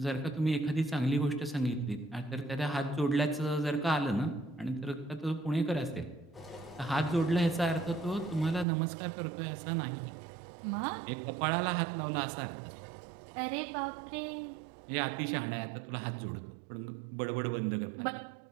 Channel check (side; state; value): left; drops out; at 8.7 s